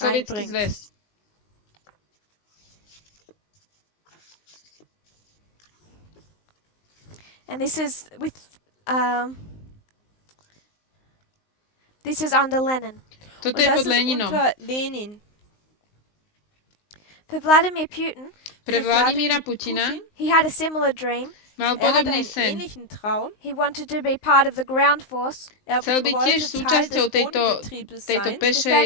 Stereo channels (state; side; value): late; right; 19 ms